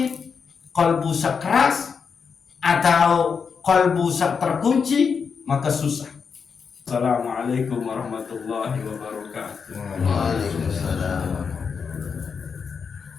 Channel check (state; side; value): quieter; right; 6.0 dB